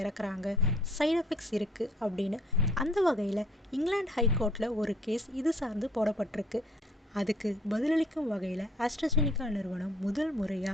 இறக்குறாங்க, சைடு எஃபெக்ட்ஸ் இருக்குது அப்படின்னு. அந்த வகையில் இங்கிலாந்து ஹைகோர்ட்டில் ஒரு கேஸ் இது சார்ந்து போடப்பட்டிருக்கு. அதுக்கு பதிலளிக்கும் வகையில் ஆஸ்ட்ராஜெனிகா நிறுவனம் முதல்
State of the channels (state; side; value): normal; both; correlation 0.57